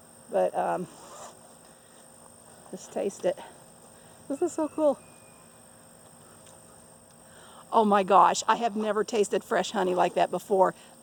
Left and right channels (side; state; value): both; identical; correlation 1.00